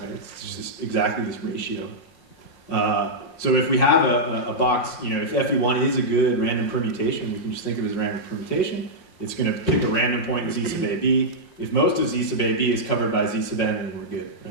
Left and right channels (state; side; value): late; right; 5.6 ms